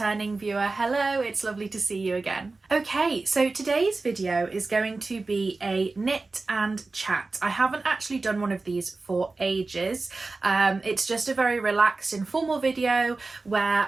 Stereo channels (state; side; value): quieter; left; 3.6 dB